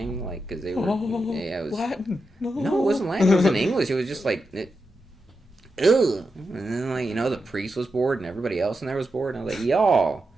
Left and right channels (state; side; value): normal; both; correlation 0.88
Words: like because they were it was Latin. No, it wasn't Latin. It was in English. It was just like ugh. And then like the priest was bored, and everybody else in there was bored, and I was like, y'all,